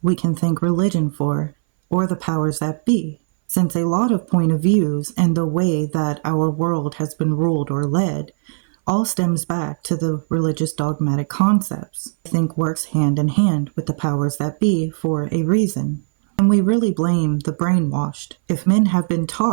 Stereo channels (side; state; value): left; silent; 63 dB below the other